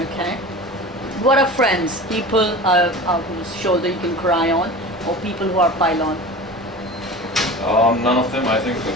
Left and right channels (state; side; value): normal; both; correlation 0.35